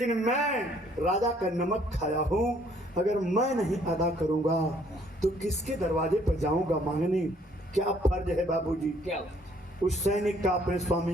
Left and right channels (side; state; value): both; normal; correlation 0.63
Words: मैं राजा का नमक खाया हूँ, अगर मैं नहीं अदा करूंगा तो किसके दरवाजे पर जाऊंगा मांगने? क्या फर्ज है बाबूजी क्या उस सैनिक का अपने